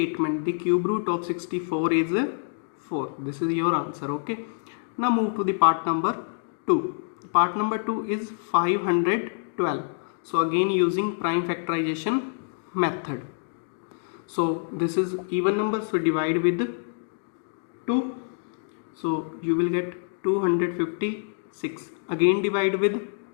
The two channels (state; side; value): silent; right; digital silence